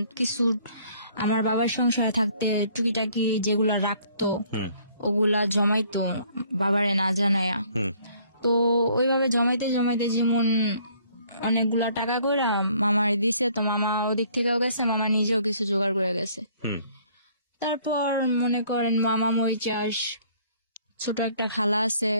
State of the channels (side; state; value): both; inverted; correlation -0.60